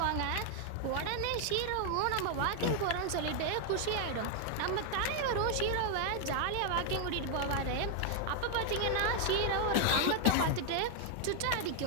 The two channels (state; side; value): different; both; correlation 0.00